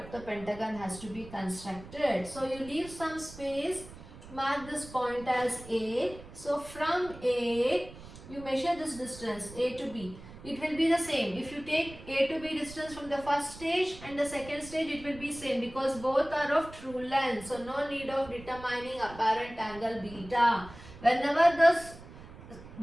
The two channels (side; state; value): right; noise; rumble, 16 dB below the sound